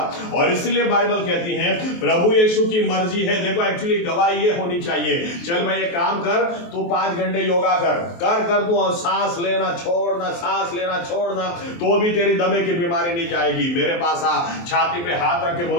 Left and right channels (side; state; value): right; late; 23 ms